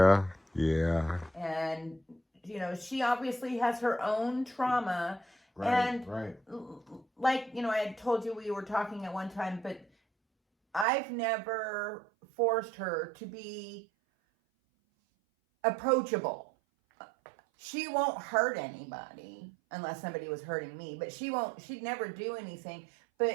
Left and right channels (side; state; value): left; drops out; at 10.9 s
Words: Yeah. And, you know, she obviously has her own trauma. Right, and right. Like, you know, I had told you we were talking at one time, but I've never forced her to be approachable. She won't hurt anybody unless somebody was hurting me, but she'd never do anything.